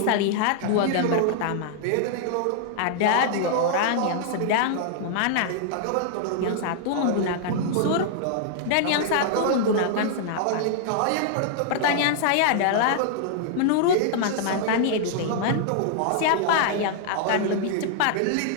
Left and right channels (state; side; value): different; both; correlation -0.01